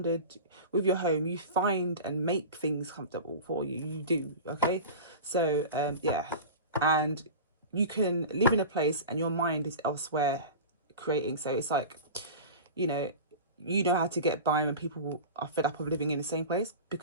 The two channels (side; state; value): both; inverted; correlation -0.31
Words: with your home. You find and make things comfortable for you. You do, okay? So, yeah. And you can live in a place and your mind is elsewhere creating. So it's like, you know how to get by when people are fed up of living in the same place,